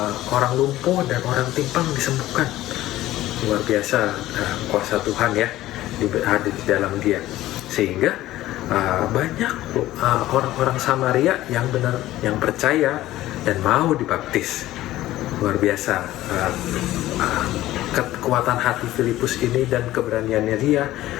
orang lumpuh dan orang timpang disembuhkan. Luar biasa kuasa Tuhan ya ada di dalam dia. Sehingga banyak orang-orang Samaria yang benar, yang percaya dan mau dibaptis. Luar biasa kekuatan hati Filipus ini dan keberaniannya dia,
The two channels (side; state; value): right; quieter; 15.3 dB